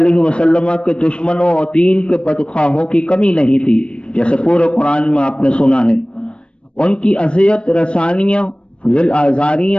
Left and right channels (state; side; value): late; right; 0.058 ms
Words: وسلم کے دشمنوں اور دین کے بدخواہوں کی کمی نہیں تھی، جیسے پورے قرآن میں آپ نے سنا ہے۔ ان کی اذیت رسانیاں، ذل